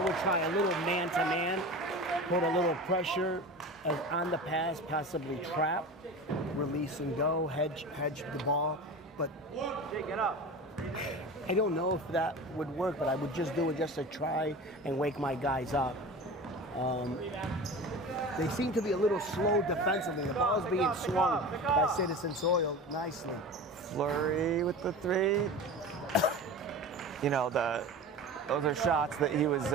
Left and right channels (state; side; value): normal; both; correlation 0.32